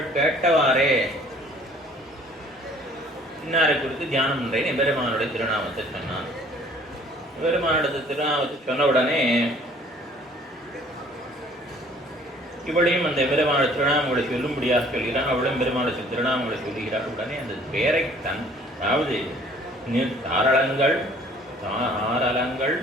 கேட்டவாறே இன்னாரை குறித்து தியானம் பண்றேன் எம்பெருமானுடைய திருநாமத்தை சொன்னான். எம்பெருமானுடைய திருநாமத்தை சொன்ன உடனே இவளையும் அந்த எம்பெருமானுடைய திருநாமங்களை சொல்லும்படியாக சொல்கிறான். அவளும் பெருமானுடைய திருநாமங்களை சொல்லுகிறாள். உடனே அந்த பெயரை அதாவது தாரளங்கள்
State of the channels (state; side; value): normal; both; correlation 0.55